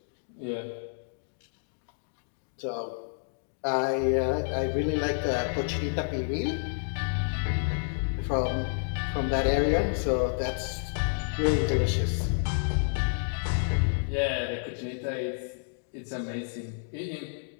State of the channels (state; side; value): silent; right; digital silence